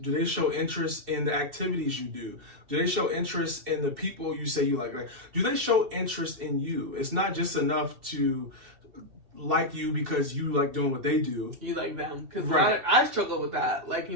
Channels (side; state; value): left; late; 2.7 ms